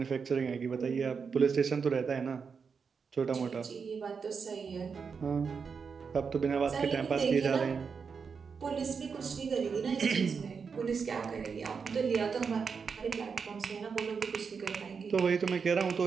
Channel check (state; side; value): quieter; left; 5.8 dB